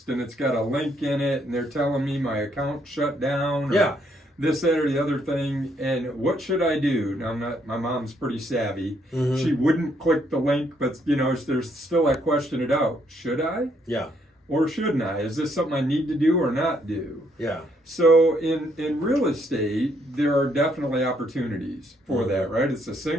and it's got a link in it, and they're telling me my account shut down. Yeah. This, that, or the other thing, and what should I do? Now, my mom's pretty savvy. Mm-hmm. She wouldn't click the link, but, there's still that question it out. Should I? Yeah. Or shouldn't I? Is this something I need to do or not do? Yeah. So in real estate, there are definitely opportunities for that, right? It's the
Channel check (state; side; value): normal; both; correlation 0.71